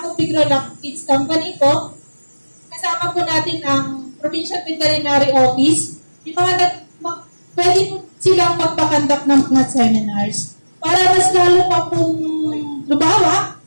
Pigrolac Kids Company po, kasama po natin ang Provincial Veterinary Office. Yung pwede po silang magpakandak ng mga seminars para mas lalo pa pong lumawa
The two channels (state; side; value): inverted; both; correlation -1.00